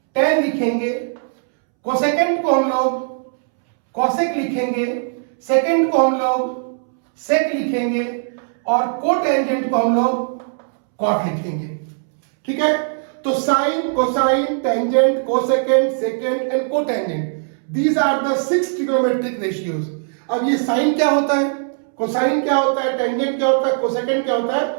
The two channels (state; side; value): silent; left; 66 dB below the other